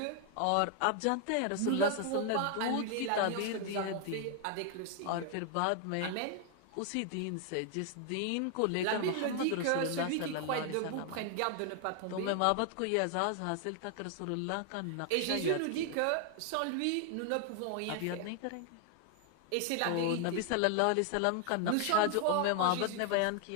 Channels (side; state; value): both; different; correlation 0.00